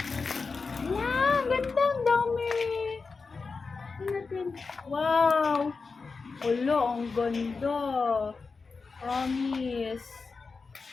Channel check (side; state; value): right; quieter; 4.5 dB